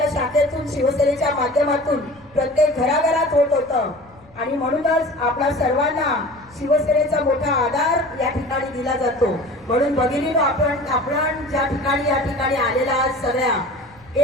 शाखेतून, शिवसेनेच्या माध्यमातून प्रत्येक घराघरात होत होतं. आणि म्हणूनच आपल्या सर्वांना शिवसेनेचा मोठा आधार या ठिकाणी दिला जातो. म्हणून भगिनीनो, आपण ज्या ठिकाणी या ठिकाणी आलेला आज सगळ्या,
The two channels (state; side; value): noise; left; rumble, 27 dB below the sound